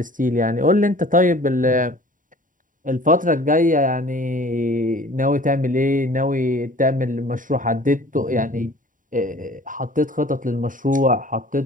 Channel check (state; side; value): late; left; 0.39 ms